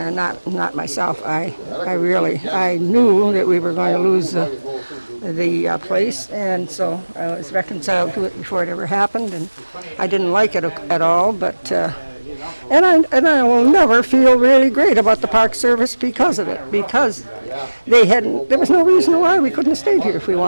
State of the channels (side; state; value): both; inverted; correlation -1.00